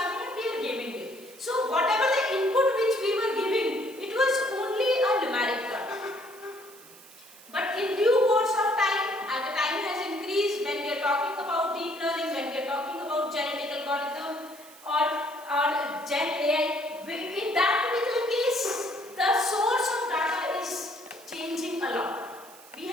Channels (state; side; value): noise; right; hiss, 21 dB below the sound